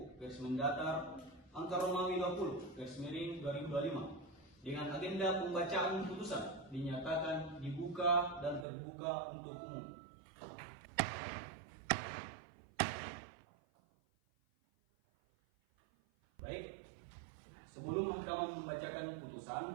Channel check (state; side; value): drops out; left; at 8.7 s